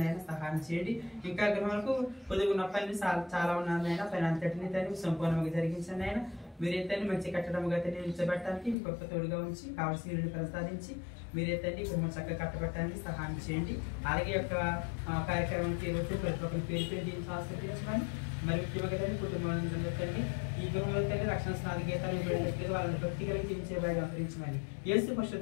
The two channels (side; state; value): right; drops out; at 8.8 s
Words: అయినా సహాయం చేయండి. ఇంకా గృహాలకు పొదుగున్న పనులు చాలా ఉన్నాయన పైన అంతటిని తండ్రి సంపూర్ణంగా జరిగించండి. అయినా మీరైతే మంచి కట్టడంగా నిలిచబెట్టడానికి మీ గొప్ప తోడుగా ఉంచి కావాల్సిన వీళ్ళని ప్రసాదించి మీరైతే గృహం చక్కగా కట్టబెట్టడానికి సహాయం చేయండి. అలాగే యొక్క కార్యక్రమానికి వచ్చి ప్రతి ఒక్కరి పేరు పేరు దీన్ని ఆస్వాదించమని మరి ముఖ్యంగా తండ్రి కుటుంబంలో తండ్రి ఈ గృహంలో తండ్రి రక్షణ స్నాన గీతాలు ఇవ్వడానికి వాళ్ళని భక్తి కలిగి జీవించే వారిని అనుసరించమని యేసు